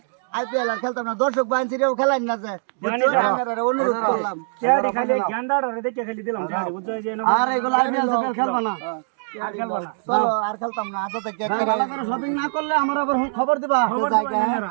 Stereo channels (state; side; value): silent; left; digital silence